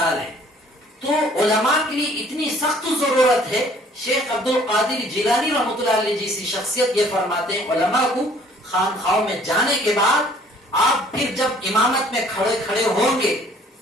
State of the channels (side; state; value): both; normal; correlation 0.57